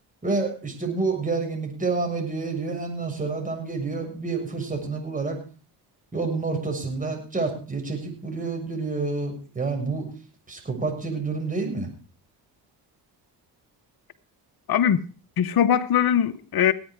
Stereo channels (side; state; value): both; normal; correlation 0.11